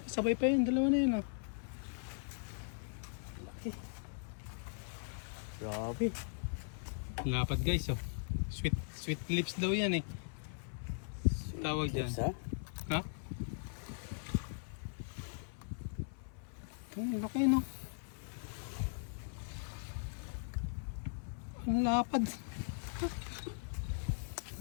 sabay pa yun, dalawa na yun ah. Laki. Grabe. Lapad guys oh. Sweet lips daw yan eh. Tawag dyan. Sa? Ha? Ang laki no. Ang lapad.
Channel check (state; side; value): silent; right; 52 dB below the other